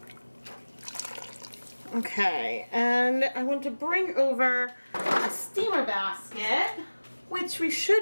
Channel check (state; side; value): inverted; both; correlation -1.00